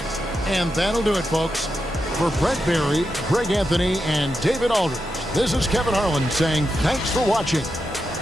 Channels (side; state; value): both; normal; correlation 0.87